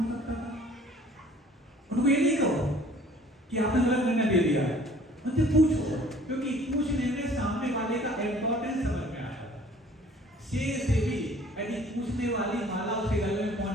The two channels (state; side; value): normal; both; correlation 0.53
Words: सकता था? उनको ये नहीं कहो कि आपने गलत निर्णय दे दिया, उनसे पूछो, क्योंकि पूछने में सामने वाले का इम्पोर्टेंस समझ में आता है। शेर से भी यदि पूछने वाली माला उसे गले में